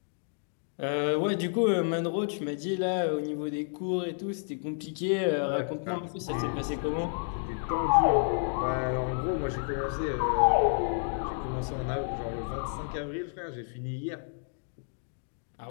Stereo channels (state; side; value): silent; right; digital silence